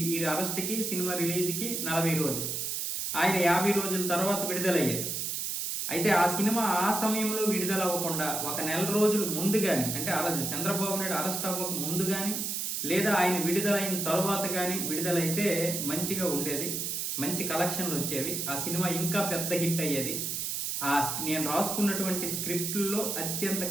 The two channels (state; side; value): noise; right; hiss, 2 dB below the sound